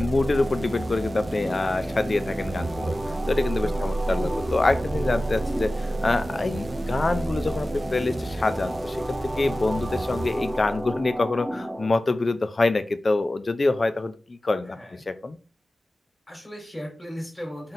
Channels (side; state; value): both; normal; correlation 0.96